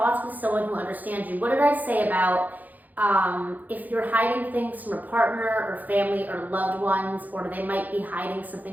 with someone who understands you. What did I say about If you're hiding things from a partner or family or loved ones, or they might be hiding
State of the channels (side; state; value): left; late; 0.082 ms